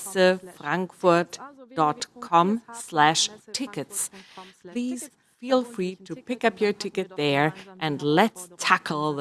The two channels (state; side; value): identical; both; correlation 1.00